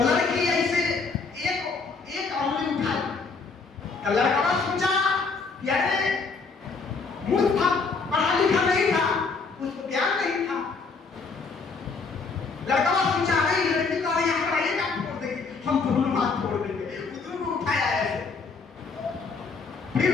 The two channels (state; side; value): quieter; right; 4.5 dB